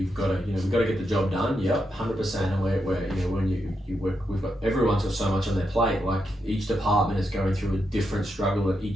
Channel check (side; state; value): both; normal; correlation 0.83